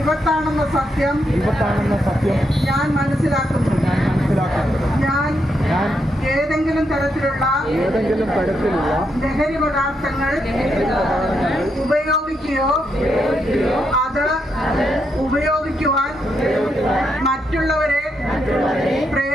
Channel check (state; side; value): normal; both; correlation 0.80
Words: സത്യം ഞാൻ മനസ്സിലാക്കുന്നു. ഞാൻ ഏതെങ്കിലും തരത്തിലുള്ള ലഹരി പദാർത്ഥങ്ങൾ ഉപയോഗിക്കുകയോ അത് ഉപയോഗിക്കുവാൻ മറ്റുള്ളവരെ